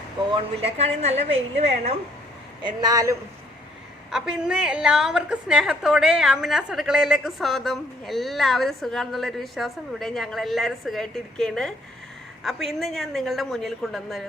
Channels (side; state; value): both; normal; correlation 0.64